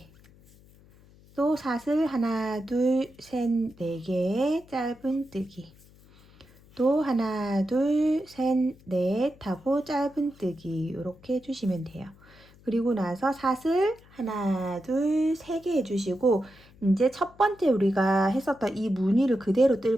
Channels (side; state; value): left; noise; hum, 26 dB below the sound